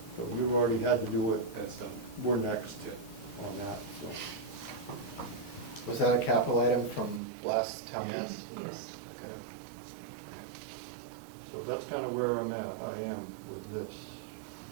So you've already had to do it. That's done. We're next on that, so. Was that a capital item from last town meeting? Yes. Okay. So that's kind of where I am with this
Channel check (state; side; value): drops out; left; at 7.2 s